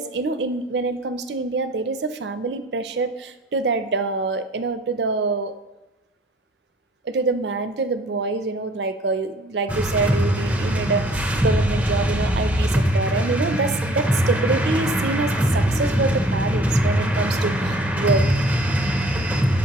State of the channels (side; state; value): both; normal; correlation 0.53